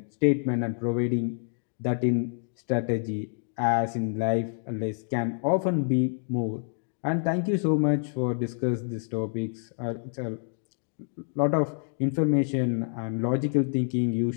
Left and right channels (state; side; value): silent; right; digital silence